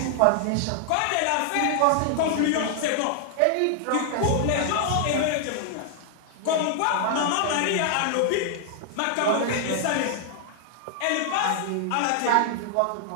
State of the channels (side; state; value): both; different; correlation 0.00